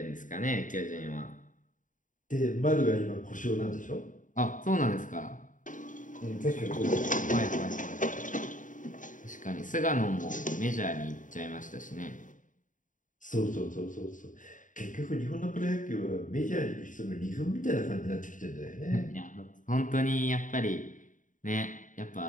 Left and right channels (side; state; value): right; late; 0.38 ms